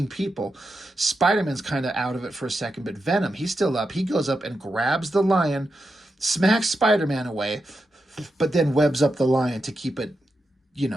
people. Spider-Man's kind of out of it for a second, but Venom, he's still up. He goes up and grabs the lion, smacks Spider-Man away, but then webs up the lion to keep it,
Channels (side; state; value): both; normal; correlation 0.87